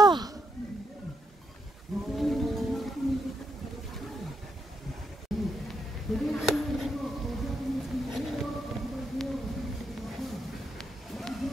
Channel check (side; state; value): both; normal; correlation 0.79